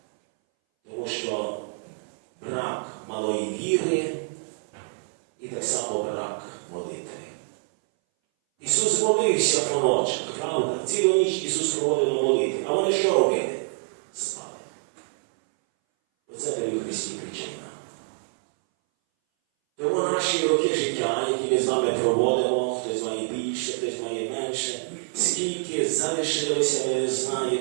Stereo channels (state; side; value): silent; left; 60 dB below the other